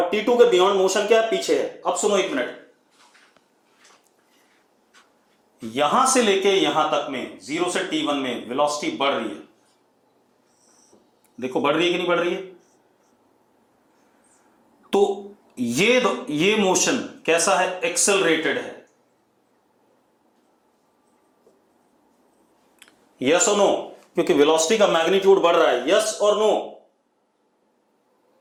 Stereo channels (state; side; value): identical; both; correlation 1.00